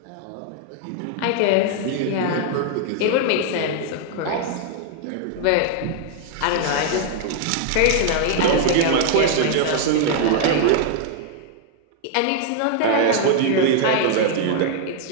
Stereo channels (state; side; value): different; both; correlation 0.00